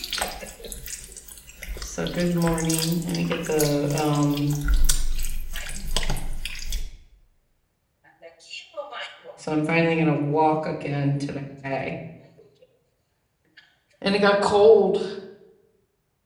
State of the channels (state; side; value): identical; both; correlation 1.00